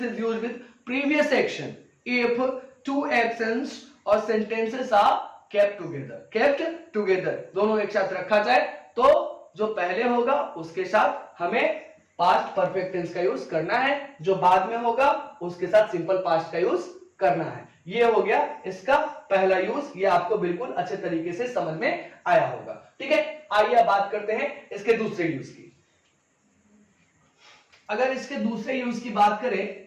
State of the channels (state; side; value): identical; both; correlation 1.00